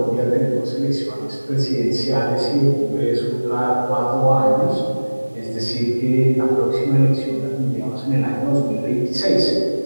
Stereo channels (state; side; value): inverted; both; correlation -1.00